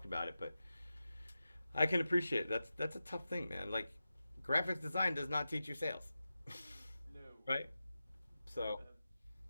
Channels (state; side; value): inverted; both; correlation -0.92